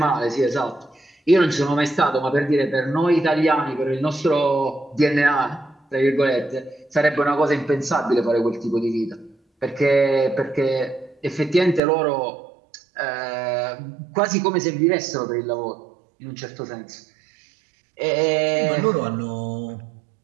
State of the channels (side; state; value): left; drops out; at 11.8 s